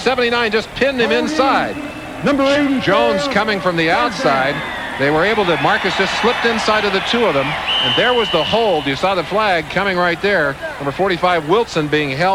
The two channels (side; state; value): both; identical; correlation 1.00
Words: just pinned him inside. Number 80. Jones coming from the outside. They were able to, Marcus just slipped inside of the two of them, and there was the hold. You saw the flag coming right there. Number 45, Wilson, being